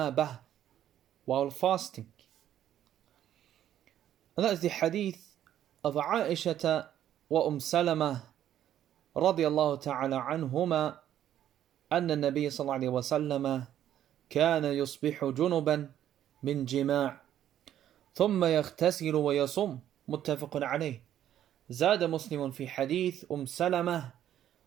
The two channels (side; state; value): left; quieter; 11.2 dB